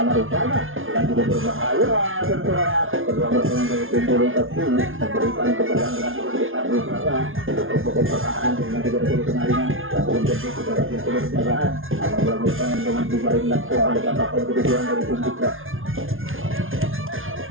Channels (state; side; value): late; left; 0.59 ms